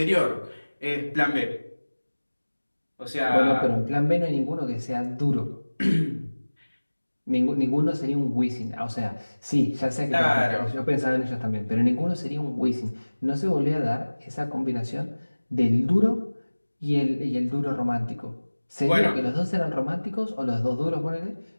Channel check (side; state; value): both; inverted; correlation -1.00